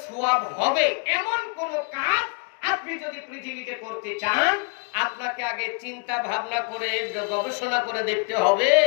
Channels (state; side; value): quieter; right; 35.8 dB